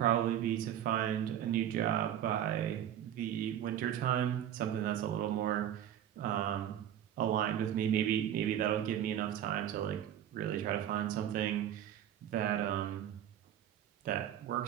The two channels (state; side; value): quieter; left; 10.6 dB